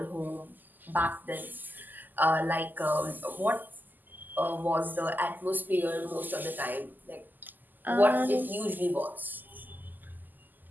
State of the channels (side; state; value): left; late; 0.086 ms